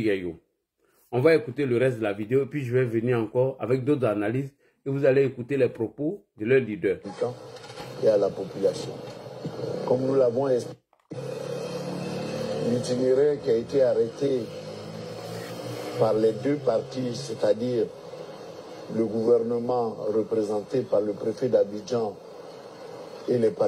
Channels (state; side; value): identical; both; correlation 1.00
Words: On va écouter le reste de la vidéo et puis je vais venir encore avec d'autres analyses et vous allez écouter les propos de leur leader. Et à la population. Comme nous l'avons expliqué, l'itinéraire qui a été arrêté par les deux partis, c'est-à-dire le gouvernement représenté par le préfet d'Abidjan et les